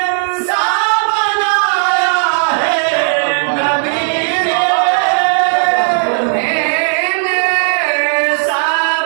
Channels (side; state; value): left; silent; 67 dB below the other